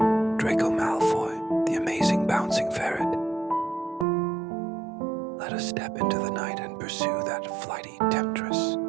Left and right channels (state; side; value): drops out; left; at 4.0 s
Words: Draco Malfoy, the amazing bouncing ferret. Let us step into the night and pursue that flighty temptress,